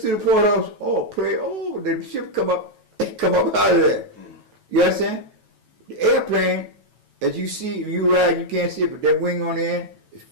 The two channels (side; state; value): left; late; 9.2 ms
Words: through the port house, oh, pray, oh, the ship come up out of there. You understand? The airplane, as you see, you ride, you can't see it, but that wing on the end is